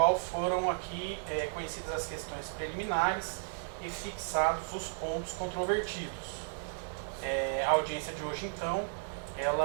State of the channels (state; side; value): silent; left; digital silence